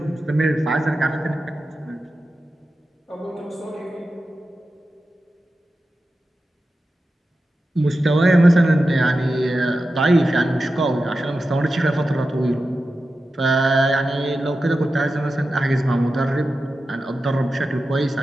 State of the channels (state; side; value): normal; both; correlation 0.92